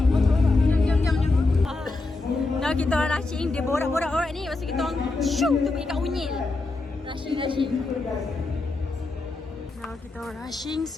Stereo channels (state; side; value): quieter; right; 3.3 dB